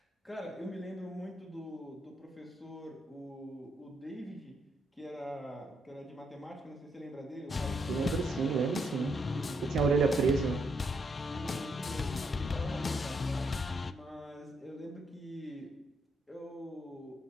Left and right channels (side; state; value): both; normal; correlation 0.76